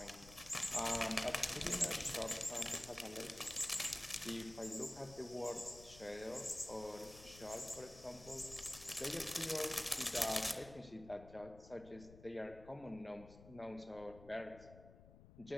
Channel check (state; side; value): noise; left; rumble, 18 dB below the sound